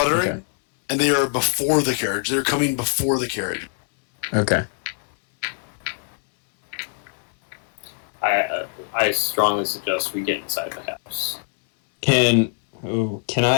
and they are before the carriage. They're coming before the carriage. Okay. I strongly suggest we get inside the house. Can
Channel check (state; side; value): silent; right; 63 dB below the other